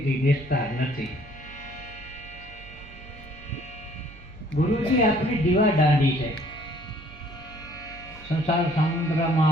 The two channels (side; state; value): right; noise; hum, 19 dB below the sound